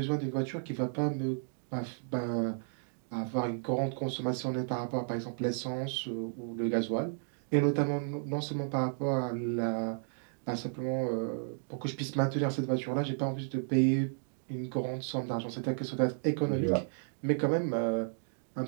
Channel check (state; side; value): silent; left; digital silence